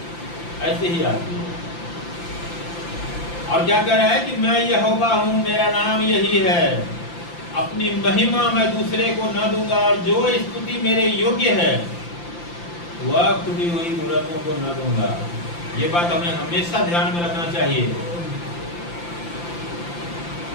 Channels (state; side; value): late; right; 5.8 ms